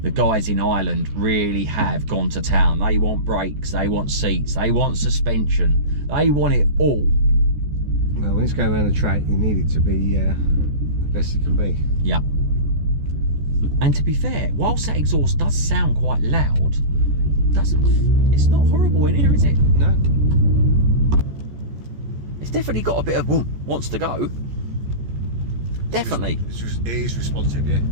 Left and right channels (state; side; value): late; left; 14 ms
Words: guys in Ireland really have gone to town. They want brakes, they want seats, they want suspension, they want it all. Well, when it's going around the track, you need it to be the best it can be. Yeah. And to be fair, whilst that exhaust does sound quite loud, it's not horrible in here, is it? No. It's definitely got a bit of wants to go. definitely. It is responsive, yeah.